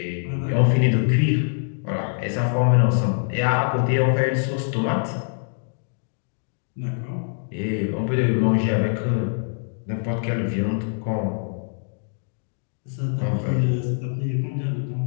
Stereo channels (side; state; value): right; silent; digital silence